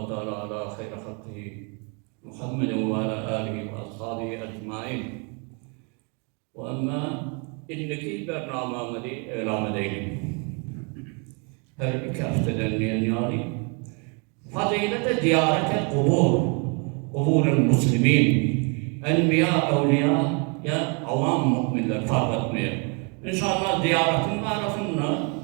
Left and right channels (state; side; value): quieter; left; 34.8 dB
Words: teala ala hayra halkihi Muhammedin ve ala alihi ve ashabihi ecmain. Ve amma inneki bernamamızı elam edelim. Her iki haftadan yani fazilete ziyarete kubur-ul muslimin, enbiya, evliya ya avam mu'minler fark etmiyor. İnşallah ziyaretin arasında